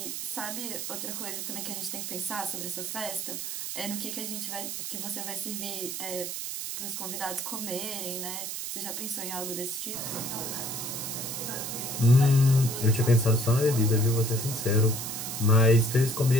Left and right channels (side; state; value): right; noise; hiss, 5 dB below the sound